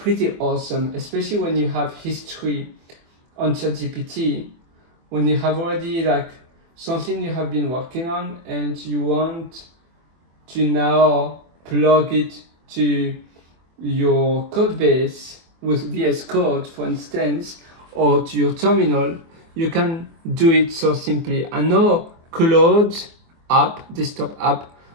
awesome, especially when you have history on ChatGPT, when you have already like something you have been working on and you want to now plug it to your code base with VS Code, for instance, or to your terminal. You can do it so simply. I know Cloud app, desktop app,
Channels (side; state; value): left; late; 24 ms